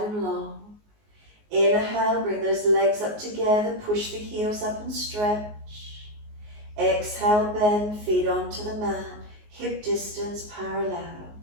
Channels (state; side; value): late; left; 19 ms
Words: and long. Inhale, bring those legs up together. Push the heels up and stretch. Exhale, bend, feet onto the mat. Hip distance parallel.